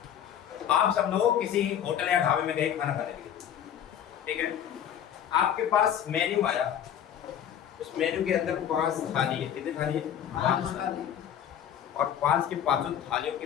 आप सब लोग किसी होटल या ढाबे में गए खाना खाने के लिए, ठीक है। आपके पास मेन्यू आया, उस मेन्यू के अंदर 5 थाली है। कितनी थाली है, 5 थाली। और 5 की 5 थालियों की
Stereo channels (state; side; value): quieter; right; 9.6 dB